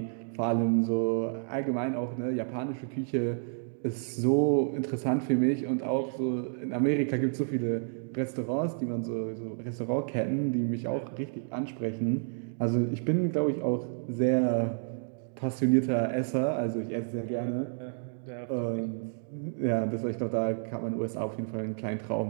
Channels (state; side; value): silent; left; digital silence